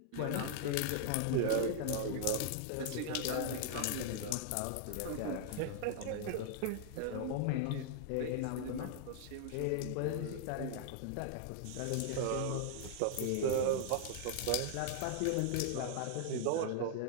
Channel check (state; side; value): different; both; correlation -0.01